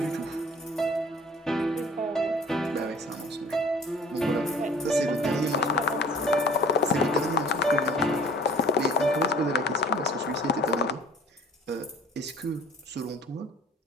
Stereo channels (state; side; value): normal; both; correlation 0.49